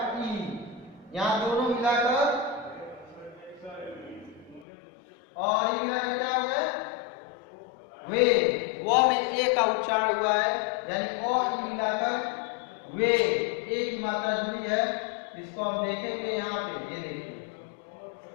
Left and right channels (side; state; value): right; drops out; at 4.7 s